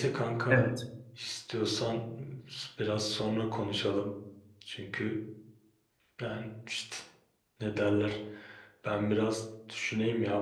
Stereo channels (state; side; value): identical; both; correlation 1.00